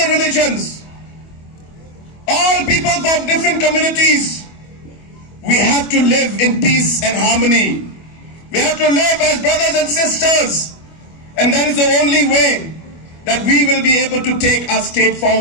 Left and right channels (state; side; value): late; right; 25 ms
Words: religions, all people from different communities, we have to live in peace and harmony. We have to live as brothers and sisters. And that is the only way that we will be able to take our state